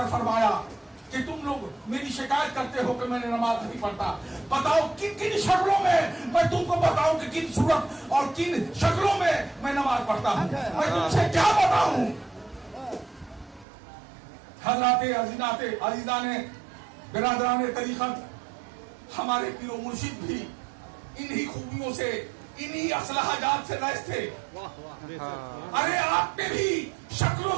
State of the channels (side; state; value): left; drops out; at 13.7 s